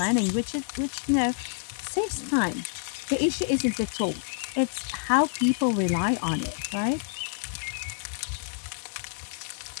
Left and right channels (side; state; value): right; silent; digital silence